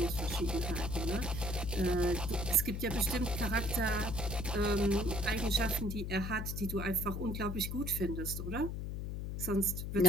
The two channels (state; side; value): noise; left; hum, 4 dB below the sound